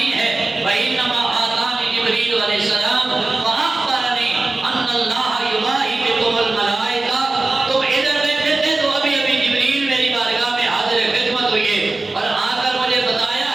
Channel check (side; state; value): left; quieter; 3.2 dB